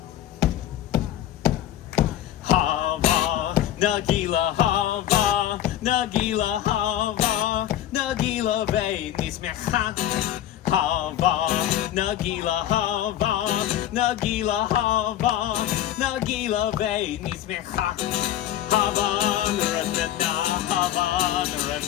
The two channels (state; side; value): quieter; right; 12.0 dB